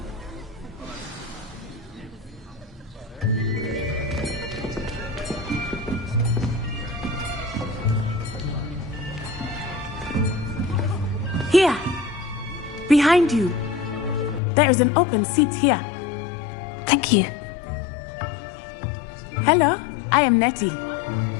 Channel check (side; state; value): right; drops out; at 14.4 s